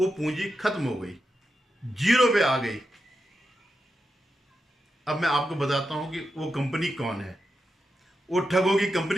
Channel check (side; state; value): both; normal; correlation 0.88